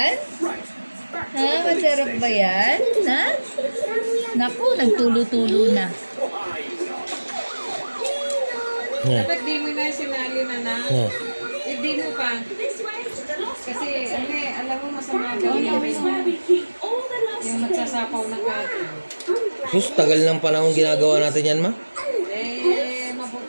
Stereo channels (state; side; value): inverted; both; correlation -1.00